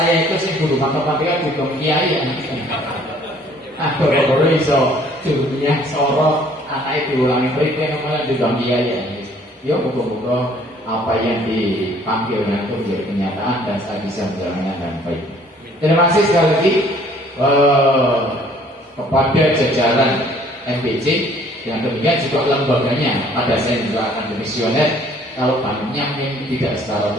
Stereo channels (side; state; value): both; normal; correlation 0.58